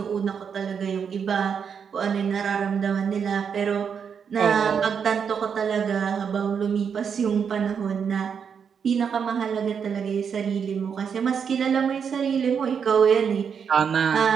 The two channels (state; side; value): quieter; left; 6.9 dB